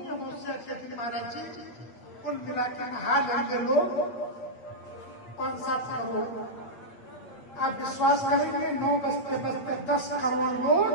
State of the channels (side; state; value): right; late; 8.3 ms